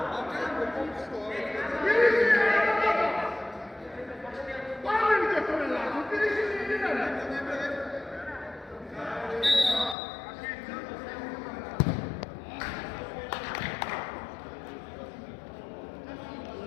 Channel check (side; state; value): right; drops out; at 10.0 s